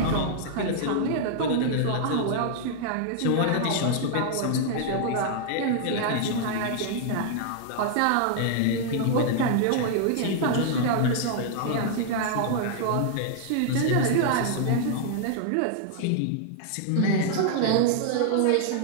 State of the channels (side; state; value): both; different; correlation -0.01